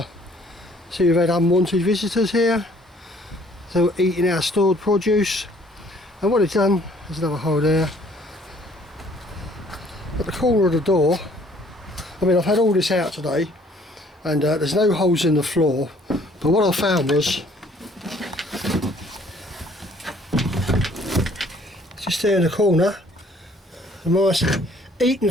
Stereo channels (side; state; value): both; normal; correlation 0.59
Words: see, we've had unwanted visitors here. They're eating our stored produce, and what it's done, there's another hole there at the corner of the door. I mean, I've had all this out today, and there's no holes in the floor, but what I found was just there in the corner, the mice eaten